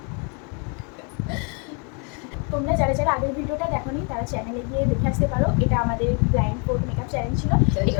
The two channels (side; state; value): right; quieter; 36.4 dB